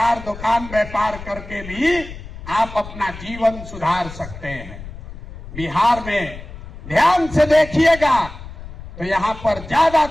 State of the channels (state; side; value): noise; left; rumble, 13 dB below the sound